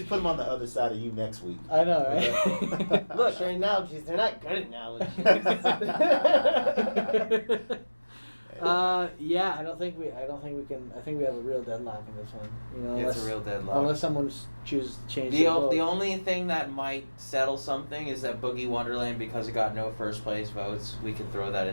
put him on the other side of you next week. I know, right? Look, their analogies, they're not good analogies. Yeah, I don't think we can. I think we have a real deadlock in this one. It's a real deadlock. Unless someone chooses to change The their vote. only thing that might settle something is that Boogie Wonderland, because it got no first place votes, we could throw that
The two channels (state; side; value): inverted; both; correlation -1.00